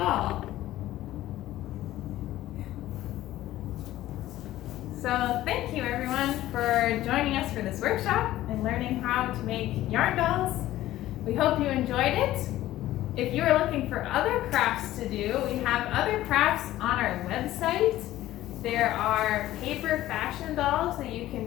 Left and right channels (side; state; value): right; quieter; 14.8 dB